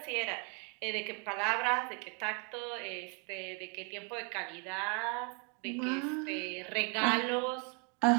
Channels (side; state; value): left; quieter; 36.2 dB